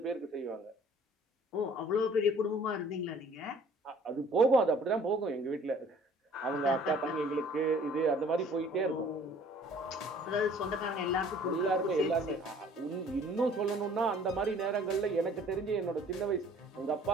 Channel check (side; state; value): both; normal; correlation 0.54